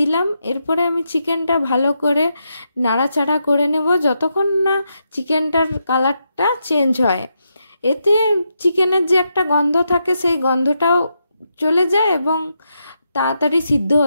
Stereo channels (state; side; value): inverted; both; correlation -0.83